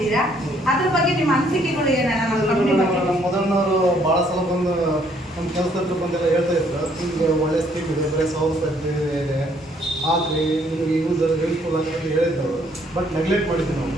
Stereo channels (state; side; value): normal; both; correlation 0.66